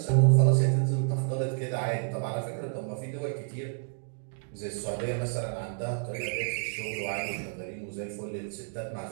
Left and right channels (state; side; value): silent; left; 58 dB below the other